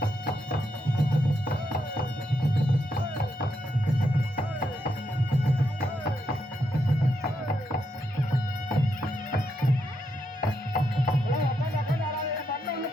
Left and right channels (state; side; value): normal; both; correlation 0.81